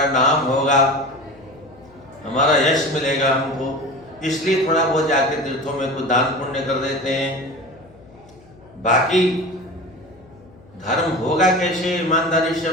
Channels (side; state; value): left; noise; hum, 25 dB below the sound